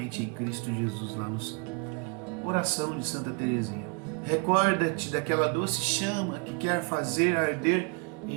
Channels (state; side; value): quieter; left; 31.2 dB